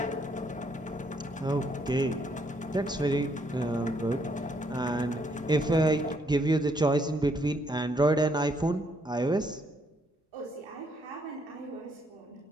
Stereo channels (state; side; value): normal; both; correlation 0.71